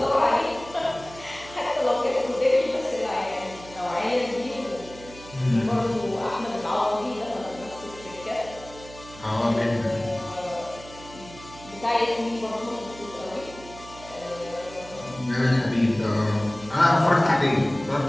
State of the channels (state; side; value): noise; right; hum, 18 dB below the sound